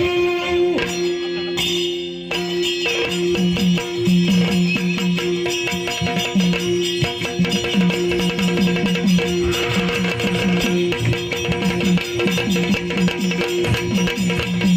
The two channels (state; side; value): identical; both; correlation 1.00